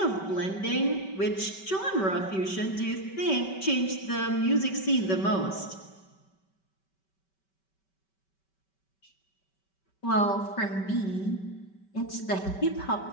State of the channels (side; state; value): right; late; 5.2 ms